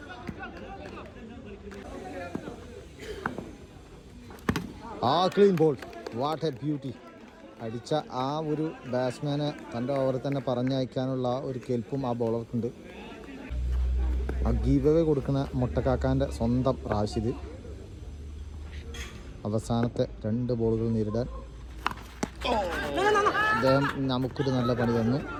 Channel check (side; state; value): both; identical; correlation 1.00